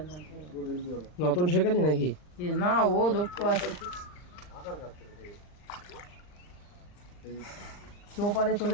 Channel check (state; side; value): late; right; 39 ms